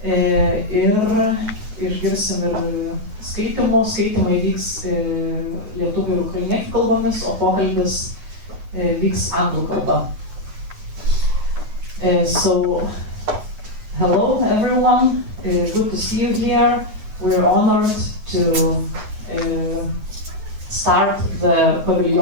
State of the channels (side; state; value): left; late; 9.3 ms